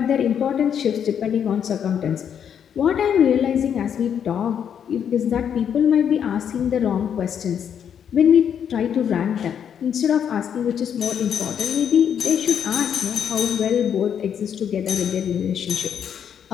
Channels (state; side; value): quieter; right; 8.4 dB